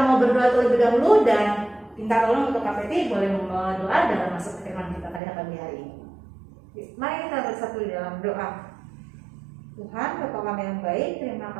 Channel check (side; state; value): left; drops out; at 5.2 s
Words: mau berdoa terlebih dahulu dan minta tolong untuk Kak Peti boleh berdoa dalam masuk ke firman kita pada pagi hari ini. Mari kita bersatu di dalam doa. Tuhan, Bapa kami yang baik, terima